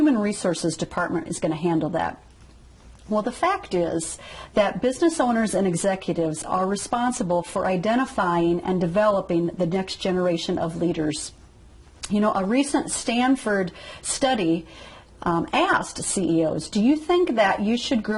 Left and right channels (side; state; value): both; identical; correlation 1.00